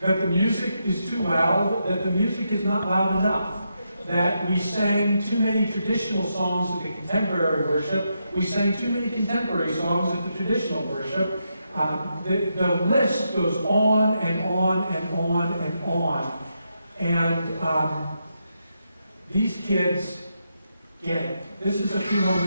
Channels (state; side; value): inverted; both; correlation -0.83